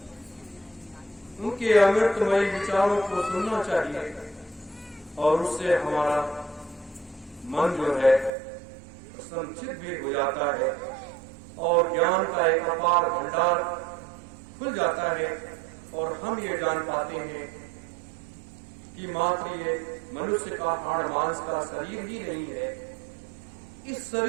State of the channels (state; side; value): drops out; left; at 8.3 s